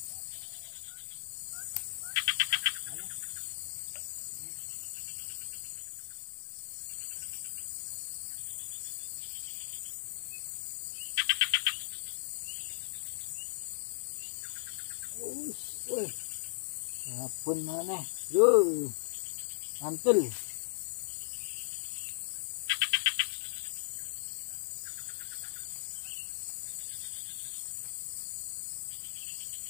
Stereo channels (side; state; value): right; silent; digital silence